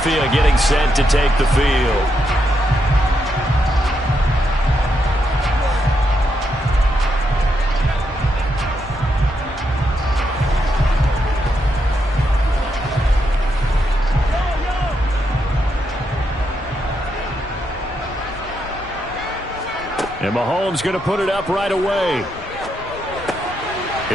getting set to take the field. And Mahomes going to put it up right away.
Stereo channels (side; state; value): both; normal; correlation 0.81